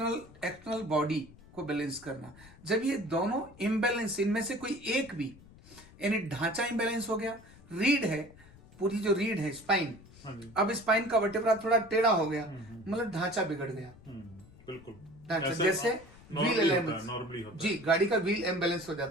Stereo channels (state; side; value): noise; left; rumble, 23 dB below the sound